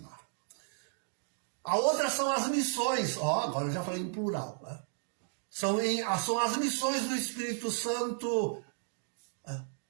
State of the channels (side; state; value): left; silent; digital silence